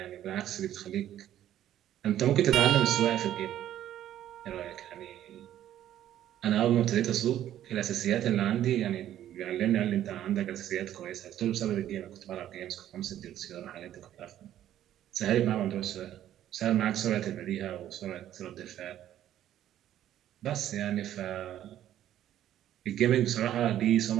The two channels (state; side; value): quieter; left; 11.9 dB